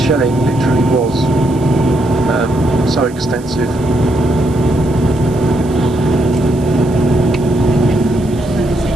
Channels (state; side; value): noise; right; hiss, 23 dB below the sound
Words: literally was so extensive.